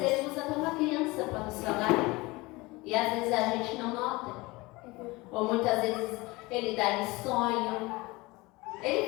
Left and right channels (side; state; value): right; quieter; 22.7 dB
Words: vezes ele usa até uma criança para nos falar. E às vezes a gente não nota. Ou muitas vezes ele dá em sonho. Ele